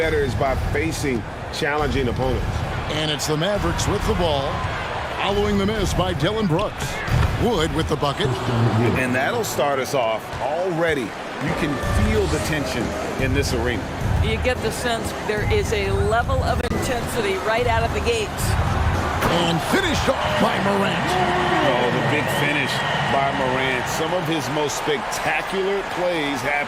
is by facing challenging opponents. And it's the Mavericks with the ball, following the miss by Dillon Brooks. Wood with the bucket. And that'll start us off already. You can feel the tension in this arena. You get the sense there is a level of intensity right out of the gates. And finished off by Morant. Oh, the big finish by Morant. Some of his most spectacular plays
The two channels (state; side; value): identical; both; correlation 1.00